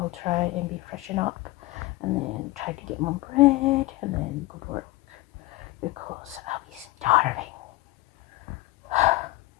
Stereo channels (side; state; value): right; quieter; 19.2 dB